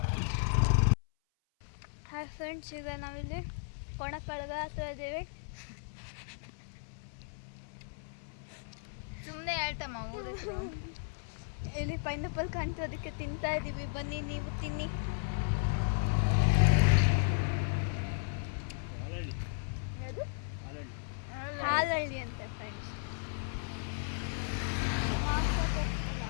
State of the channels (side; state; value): right; silent; 55 dB below the other